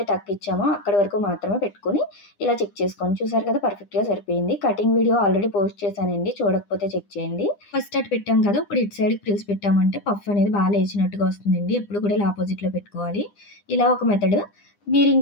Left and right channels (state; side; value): late; right; 9.9 ms